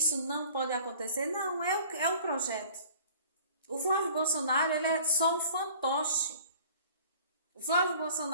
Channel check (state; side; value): inverted; both; correlation -0.48